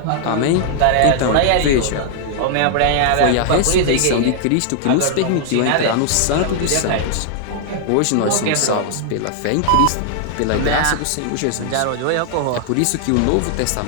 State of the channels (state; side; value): different; both; correlation 0.00